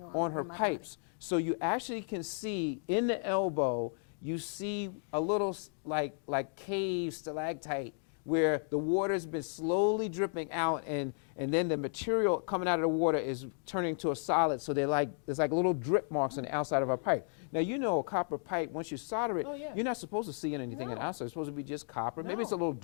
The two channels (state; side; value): silent; right; 55 dB below the other